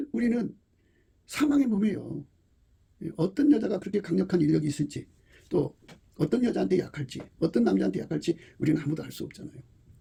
우리는 사망의 몸이에요. 어떤 여자가 그렇게 강력한 인력이 있을지 또 어떤 여자한테 약할지 어떤 남자한테 약할지 우리는 아무도 알 수 없잖아요.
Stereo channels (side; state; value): both; identical; correlation 1.00